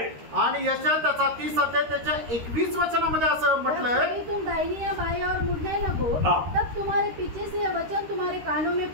आणि यशायाह त्याचा 30 अध्याय त्याच्या 21 वचनामध्ये असं म्हटलंय, जब तुम दाहिनी या बाएं और मुड़ने लगो, तब तुम्हारे पीछे से यह वचन तुम्हारे कानों में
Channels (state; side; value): late; left; 13 ms